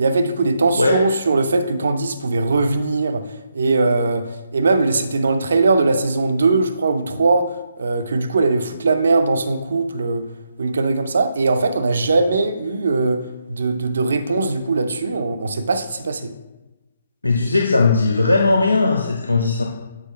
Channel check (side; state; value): both; inverted; correlation -0.80